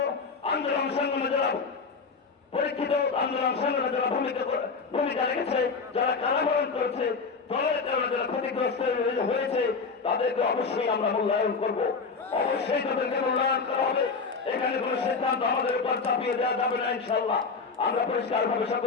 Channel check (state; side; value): quieter; right; 4.8 dB